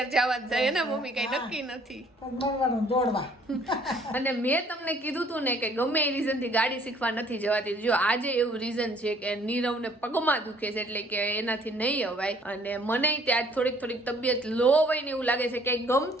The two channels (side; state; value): both; normal; correlation 0.60